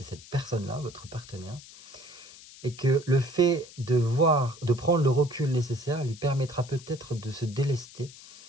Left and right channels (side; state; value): left; noise; hiss, 19 dB below the sound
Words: cette personne-là, votre partenaire. Et que le fait de prendre le recul nécessaire lui permettra peut-être de se délester